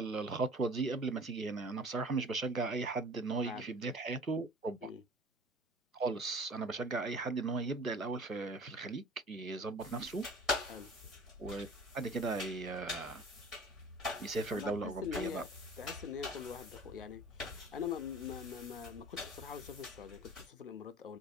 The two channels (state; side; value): normal; both; correlation 0.45